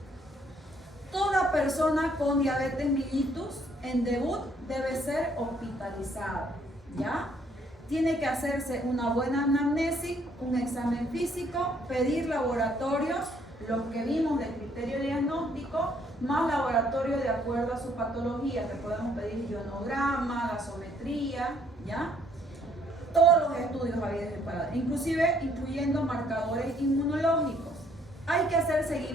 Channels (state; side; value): normal; both; correlation 0.66